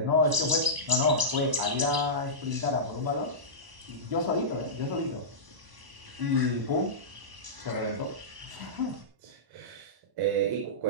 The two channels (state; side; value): late; left; 1.0 ms